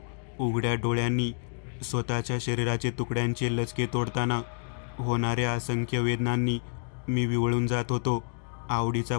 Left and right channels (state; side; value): silent; right; digital silence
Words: उघड्या डोळ्यांनी स्वतःच्या शरीराचे तुकड्यांचे लचके तोडताना होणाऱ्या असंख्य वेदनांनी मी विवळून जात होतो. आवडीचा